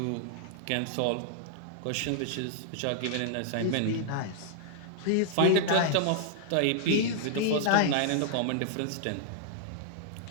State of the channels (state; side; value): different; both; correlation -0.01